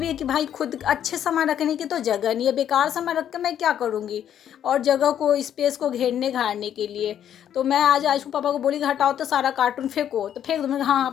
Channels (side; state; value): right; quieter; 10.0 dB